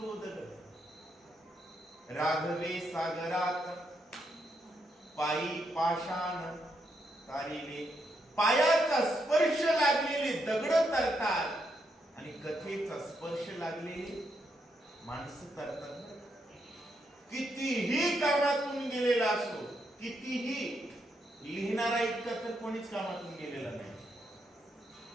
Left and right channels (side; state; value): both; normal; correlation 0.79